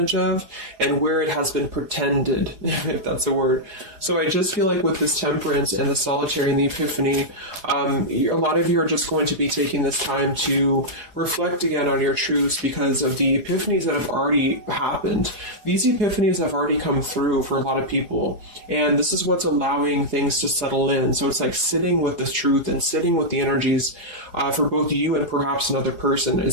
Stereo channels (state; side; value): late; left; 4.8 ms